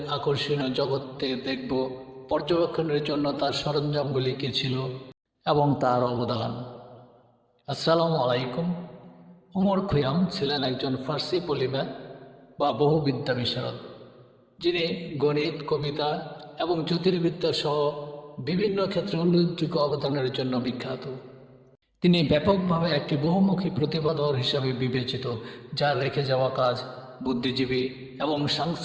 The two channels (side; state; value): both; identical; correlation 1.00